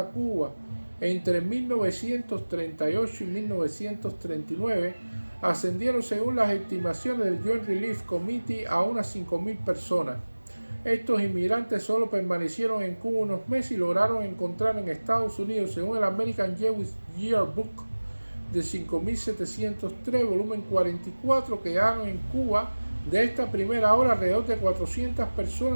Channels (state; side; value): inverted; both; correlation -1.00